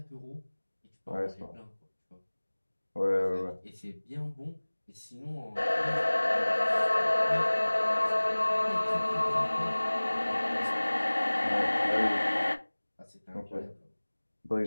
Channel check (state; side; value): inverted; both; correlation -1.00